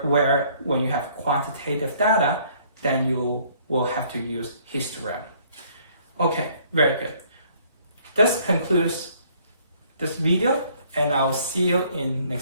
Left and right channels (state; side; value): inverted; both; correlation -0.61